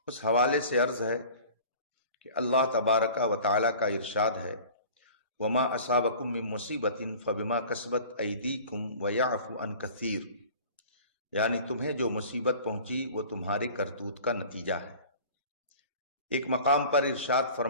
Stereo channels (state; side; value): inverted; both; correlation -0.44